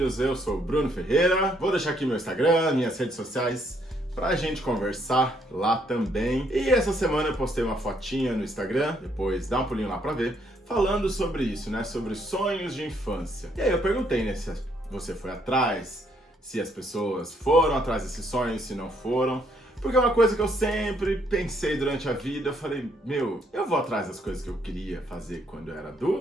eu sou o Bruno Ferreira, vou deixar aqui meu Instagram, minhas redes sociais, pra gente conversar lá também. E essa semana eu postei uma fotinha no Instagram, depois dá um pulinho lá pra ver, falando sobre isso, né, sobre sonhos de infância. E aí eu perguntei, né, se você foi atrás, se as pessoas foram atrás desses sonhos, se não foram. Porque é uma coisa que eu sempre pensei durante a vida, eu falei, eu vou atrás das coisas que eu queria fazer quando eu era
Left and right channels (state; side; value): normal; both; correlation 0.70